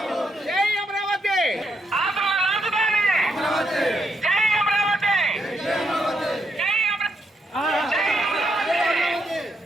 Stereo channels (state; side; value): normal; both; correlation 0.78